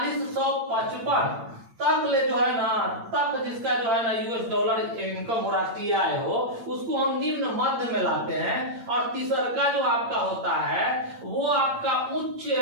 तक ले जो है ना, तक जिसका जो है ना यूएस डॉलर इनकम हो, राष्ट्रीय आय हो, उसको हम निम्न मध्य में लाते हैं। और तीसरा जो आपका होता है वो आपका उच्च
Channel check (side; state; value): left; late; 8.8 ms